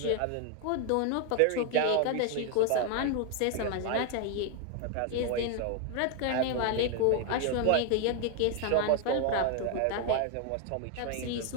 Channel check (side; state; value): both; different; correlation 0.01